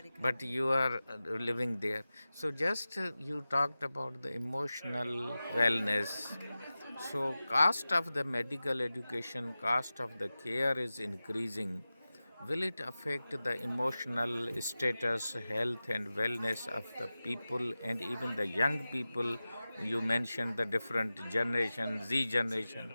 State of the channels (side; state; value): both; inverted; correlation -0.96